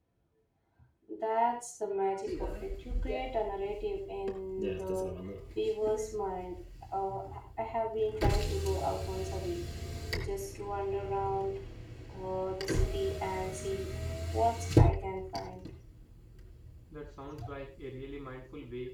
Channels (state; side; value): identical; both; correlation 1.00